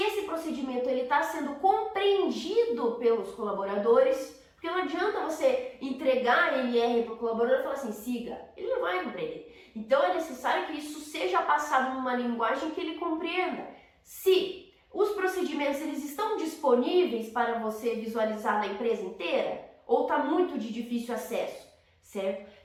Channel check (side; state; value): both; identical; correlation 1.00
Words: procedimento está sendo compreendido pelos colaboradores, Porque não adianta você entregar a NR para o colaborador e falar assim, siga, ele não vai compreender. Então é necessário que isso seja passado numa linguagem que ele compreenda. Se os procedimentos eles estão disponíveis para você visualizar na empresa inteira, ou está muito de difícil acesso, certo?